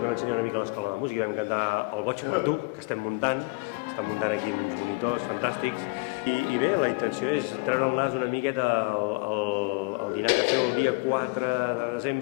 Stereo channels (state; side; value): quieter; right; 27.9 dB